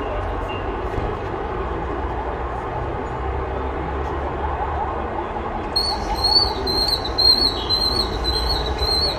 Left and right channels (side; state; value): both; identical; correlation 1.00